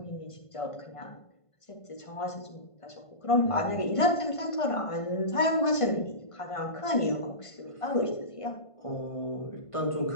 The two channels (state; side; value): late; right; 1.5 ms